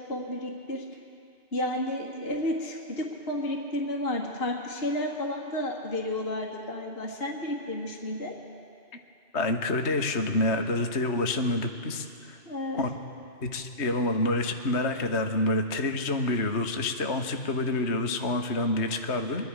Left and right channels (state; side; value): late; right; 3.1 ms